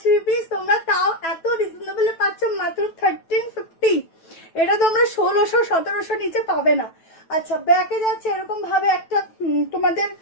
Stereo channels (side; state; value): right; late; 9.1 ms